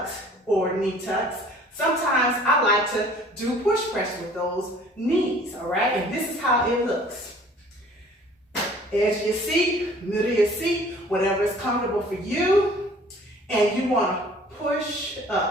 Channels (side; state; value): both; normal; correlation 0.52